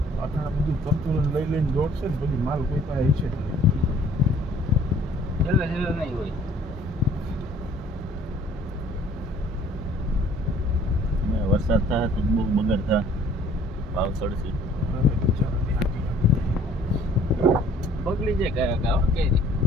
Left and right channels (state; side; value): normal; both; correlation 0.56